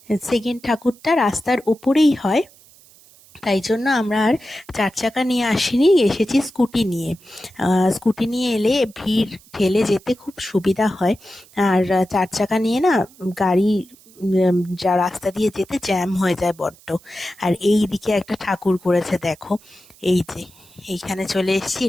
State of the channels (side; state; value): right; noise; hiss, 26 dB below the sound